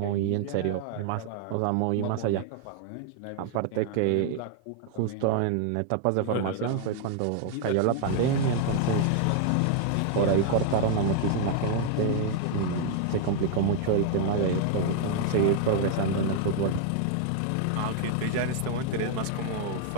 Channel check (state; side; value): different; both; correlation 0.00